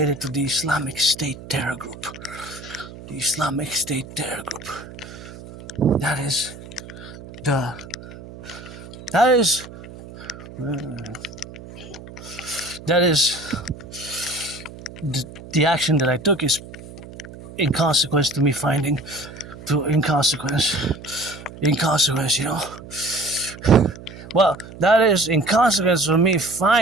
to the Islamic State terror group. The Islamic State terror group. That is the action that I took is in consequence to me finding, well, that is in consequence of me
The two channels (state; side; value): noise; right; hum, 15 dB below the sound